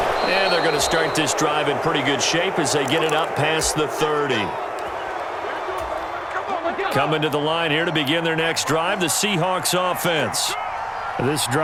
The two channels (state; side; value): identical; both; correlation 1.00